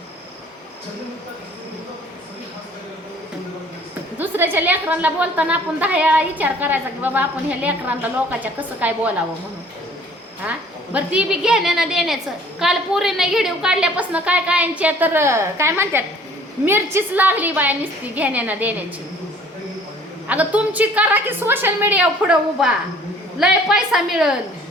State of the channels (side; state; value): both; normal; correlation 0.54